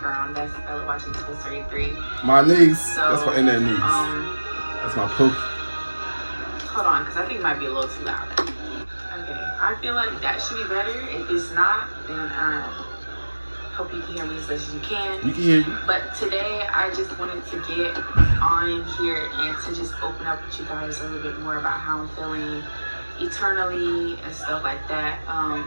That's watching Toy Story 3. My niece. So, that's my internet niece. That's my poke. Hold on, because I think it might be a little too loud. Okay, I feel like that should be better. If it's not, then hope you can hear me as much as you can. We can hear you. But today, I just wanted to get on here and to just open up with you guys a little bit more about how I'm feeling eternally and stuff like that.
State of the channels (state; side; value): inverted; both; correlation -1.00